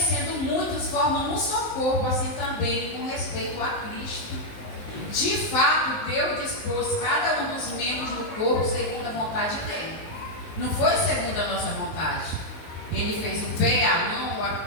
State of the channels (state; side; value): late; right; 19 ms